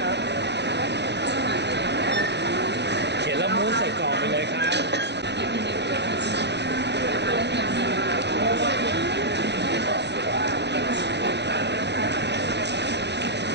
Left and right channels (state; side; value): late; left; 0.50 ms